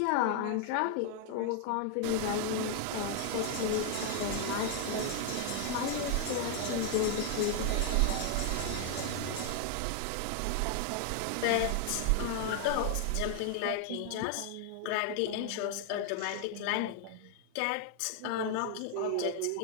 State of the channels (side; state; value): both; different; correlation 0.00